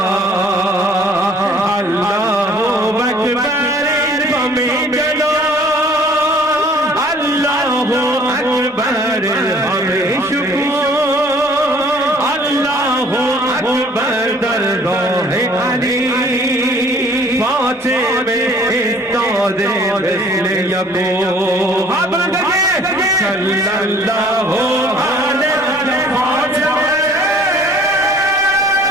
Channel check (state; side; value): normal; both; correlation 0.54